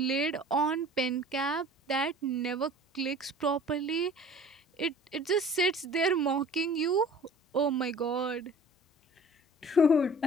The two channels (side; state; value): both; normal; correlation 0.46